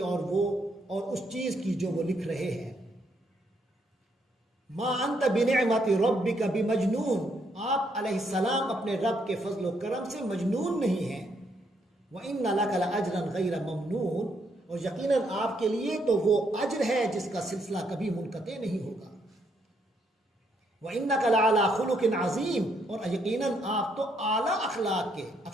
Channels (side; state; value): both; normal; correlation 0.73